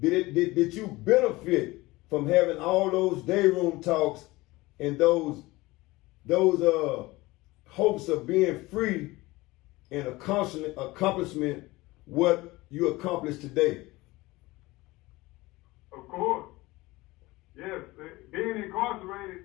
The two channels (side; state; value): right; quieter; 20.6 dB